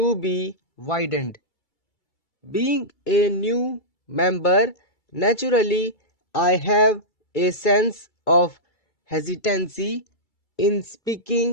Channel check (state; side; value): late; right; 2.3 ms